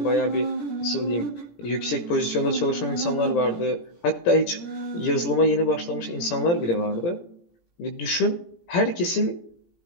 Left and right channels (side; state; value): right; late; 17 ms